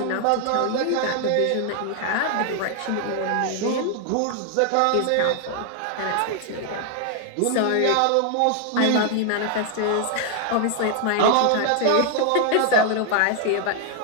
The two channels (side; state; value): both; different; correlation 0.00